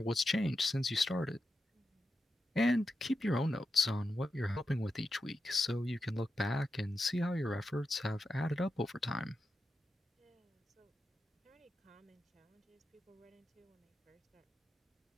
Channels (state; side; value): normal; both; correlation 0.88